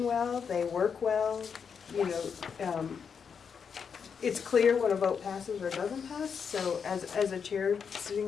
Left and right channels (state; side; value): quieter; right; 6.5 dB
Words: well, they work well, you know, it's clear when a vote passes or doesn't pass, so as a chair